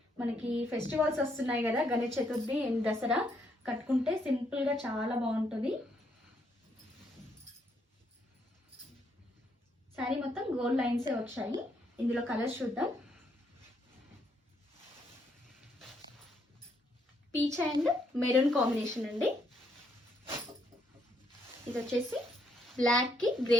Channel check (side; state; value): both; normal; correlation 0.73